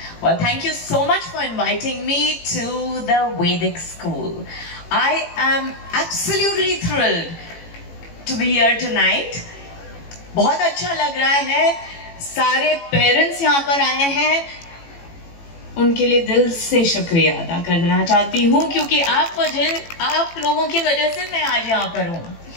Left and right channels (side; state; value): right; late; 18 ms